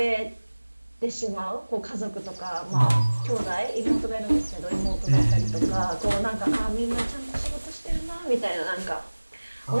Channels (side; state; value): both; inverted; correlation -1.00